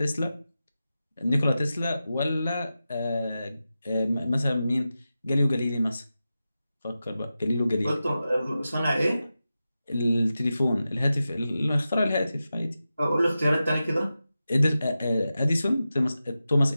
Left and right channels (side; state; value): both; inverted; correlation -0.92